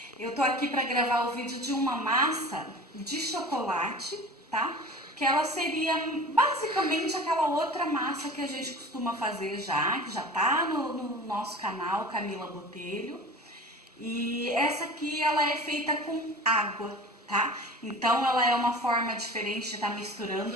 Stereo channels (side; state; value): both; normal; correlation 0.38